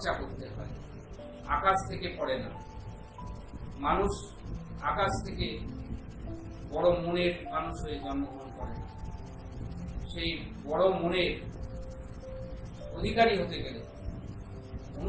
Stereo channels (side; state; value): both; identical; correlation 1.00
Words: করতে হয়। আকাশ থেকে পড়ে না, মানুষ আকাশ থেকে বড় মনের মানুষ হয়ে জন্মগ্রহণ করে। সেই বড় মনের অধিকারী হতে গেলে